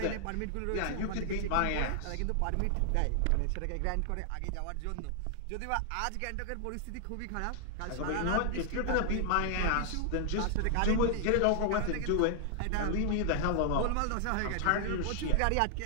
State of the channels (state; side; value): different; both; correlation 0.00